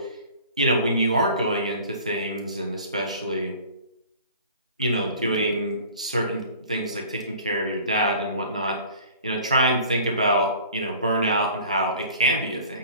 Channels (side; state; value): both; inverted; correlation -0.45